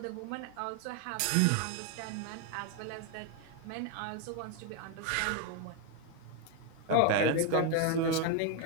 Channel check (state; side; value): different; both; correlation 0.01